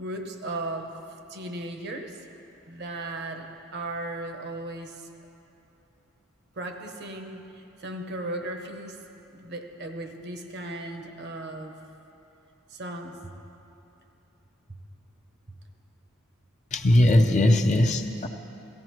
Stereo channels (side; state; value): both; normal; correlation 0.79